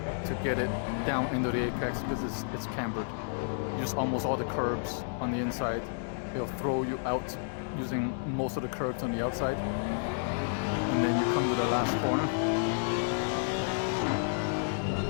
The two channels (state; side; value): silent; right; digital silence